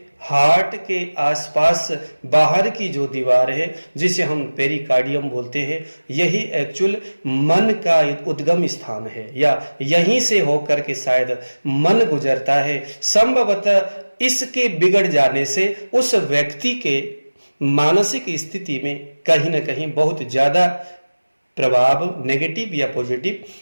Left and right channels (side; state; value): both; inverted; correlation -1.00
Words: हार्ट के आसपास बाहर की जो दीवार है जिसे हम पेरिकार्डियम बोलते हैं, यही एक्चुअल मन का उद्गम स्थान है, या यहीं से होकर के शायद मन गुजरता है। संभवतः इसके बिगड़ जाने से उस व्यक्ति के मानसिक स्थिति में कहीं ना कहीं बहुत ज्यादा प्रभाव नेगेटिव या पॉजिटिव